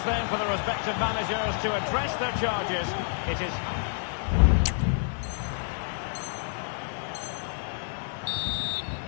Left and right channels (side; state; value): right; silent; digital silence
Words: then for the respective managers to address their charges. It is...